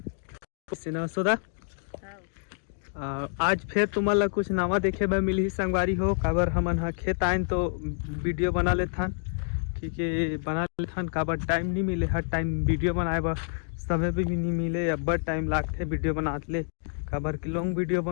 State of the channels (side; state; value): right; silent; digital silence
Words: से न सोदा आज फिर तुमन ला कुछ नवा देखे बर मिली संगवारी हो। काबर हमन हा खेत आइन तो वीडियो बना लेथन, क्योंकि बना लेथन काबर टाइम नहीं मिले, हर टाइम वीडियो बनाए बर समय भी नहीं मिले, अब्बड़ टाइम लागथे वीडियो बनात ले। काबर कि लॉन्ग वीडियो